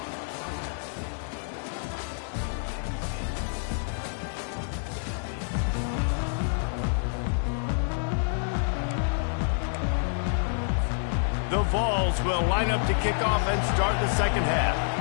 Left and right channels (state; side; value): silent; right; digital silence